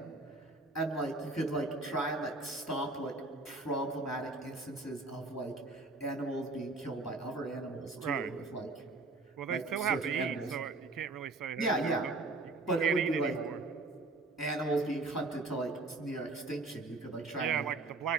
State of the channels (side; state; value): left; quieter; 3.3 dB